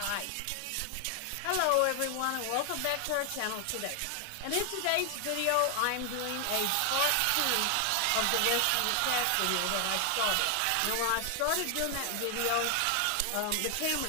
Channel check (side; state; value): both; different; correlation 0.00